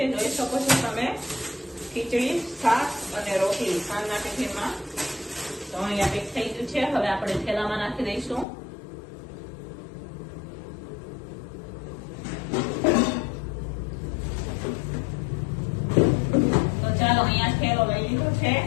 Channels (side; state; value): right; drops out; at 8.5 s